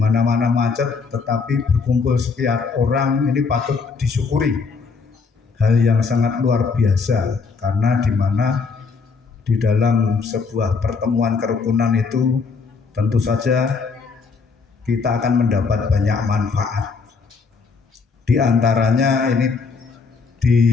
macet, tetapi berkumpul sekian orang ini patut disyukuri. Hal yang sangat luar biasa, karena di mana di dalam sebuah pertemuan kerukunan itu tentu saja kita akan mendapat banyak manfaat. Di antaranya ini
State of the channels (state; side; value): quieter; right; 4.9 dB